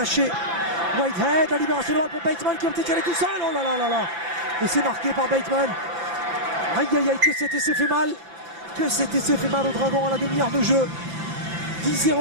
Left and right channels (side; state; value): left; late; 5.3 ms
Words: Whitehead, la libération de pour Bateman qui a été calé tout seul. Oh là là là là. Et c'est marqué par Bateman. Aïe aïe aïe, que cet essai fait mal. Au Dragon à la demi-heure de jeu. 10-0